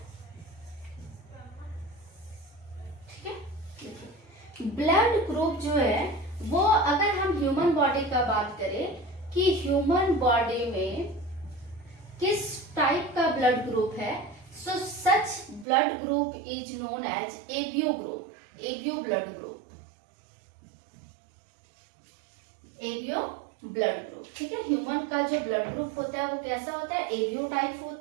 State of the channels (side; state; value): left; drops out; at 15.7 s